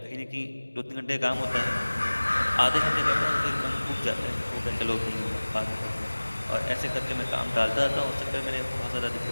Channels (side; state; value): both; inverted; correlation -1.00